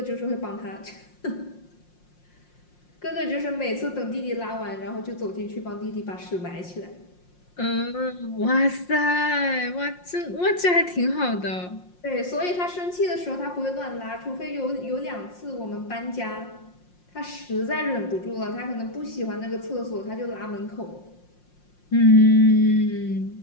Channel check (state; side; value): late; right; 5.6 ms